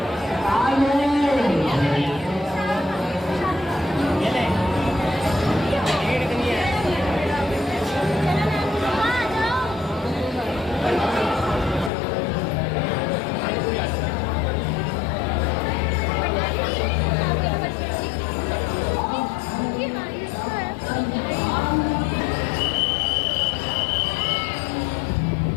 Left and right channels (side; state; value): right; drops out; at 11.9 s